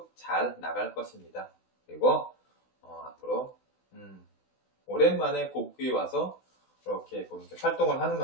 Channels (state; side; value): late; right; 16 ms